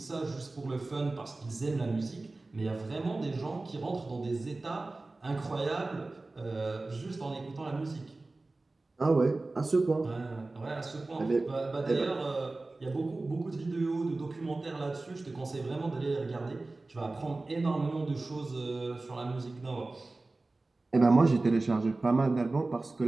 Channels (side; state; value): left; quieter; 3.2 dB